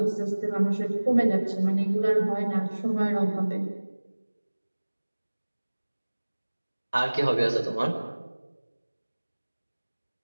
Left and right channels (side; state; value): both; inverted; correlation -1.00